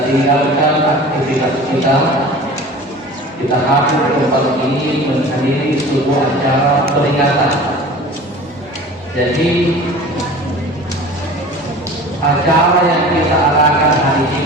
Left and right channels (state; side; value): normal; both; correlation 0.40